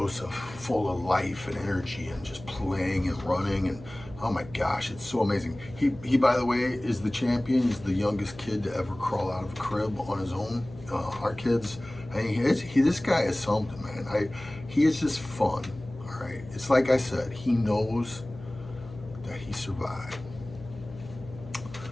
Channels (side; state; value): left; noise; hum, 16 dB below the sound